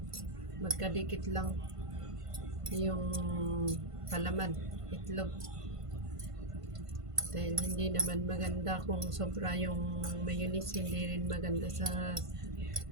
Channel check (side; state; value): left; late; 1.5 ms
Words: magkadikit lang yung palaman, itlog. Dahil hindi naman maganda kung sobra yung mayonnaise, hindi rin maganda sa